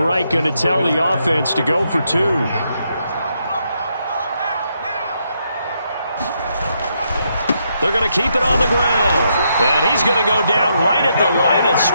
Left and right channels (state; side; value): inverted; both; correlation -0.78